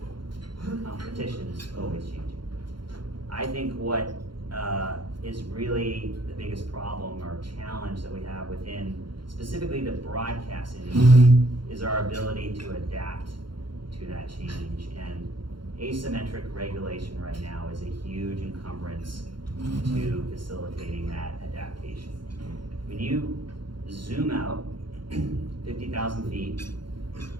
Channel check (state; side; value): late; left; 0.72 ms